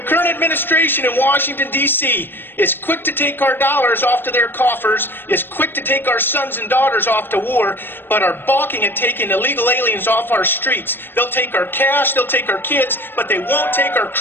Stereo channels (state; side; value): late; right; 0.098 ms